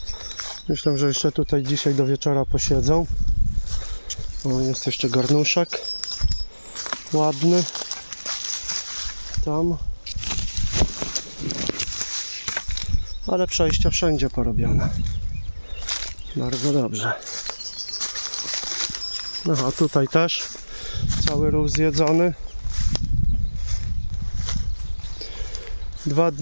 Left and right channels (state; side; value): inverted; both; correlation -1.00